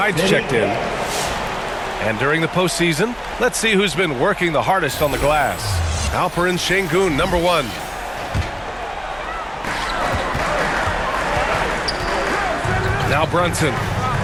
checked in. And during the postseason, let's see who's been working the hardest on the glass. Alperen Şengün, number 1. Now Brunson.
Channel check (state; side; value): identical; both; correlation 1.00